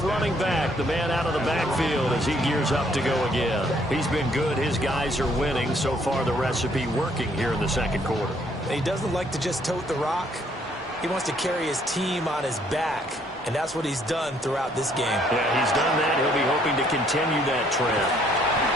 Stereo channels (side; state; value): both; normal; correlation 0.66